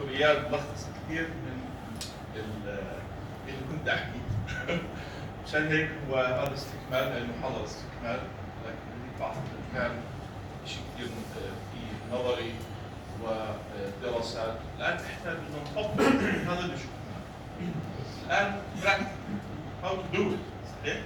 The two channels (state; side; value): identical; both; correlation 1.00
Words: اياد لخص كثير من اللي كنت احكيه. مشان هيك هو هذا استكمال للمحاضره استكمال، لكن بعض كان شيء كثير في نظري ودراسات. الان احنا بدنا نطبق هذا اللي شفناه. الان practical how to do it. صحيح؟